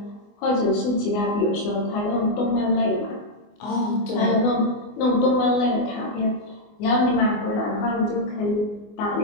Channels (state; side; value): late; right; 24 ms